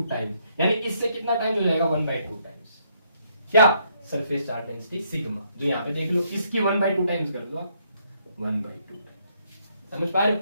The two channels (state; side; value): inverted; both; correlation -0.72